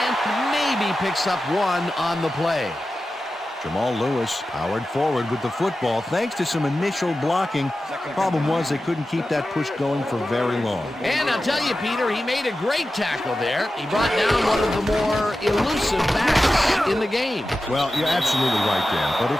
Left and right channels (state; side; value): normal; both; correlation 0.93